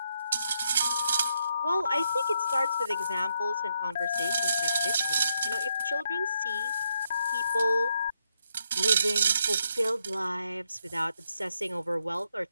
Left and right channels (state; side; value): inverted; both; correlation -0.78